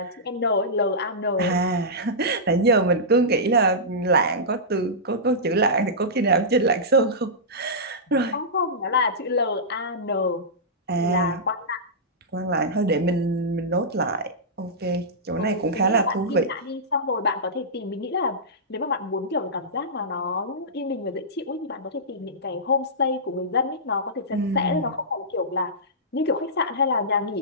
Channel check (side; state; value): both; normal; correlation -0.15